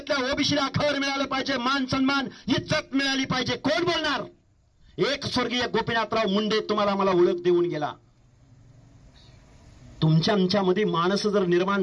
ओबीसीला घर मिळालं पाहिजे, मान सन्मान इज्जत मिळाली पाहिजे. कोण बोलणार? एक स्वर्गीय गोपीनाथराव मुंडे तुम्हाला मला ओळख देऊन गेला. तुमच्या आमच्यामध्ये माणसं जर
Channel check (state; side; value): identical; both; correlation 1.00